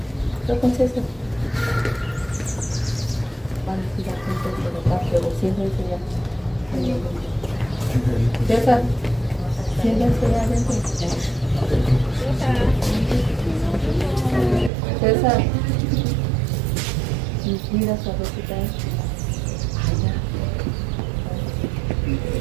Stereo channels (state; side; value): drops out; left; at 14.7 s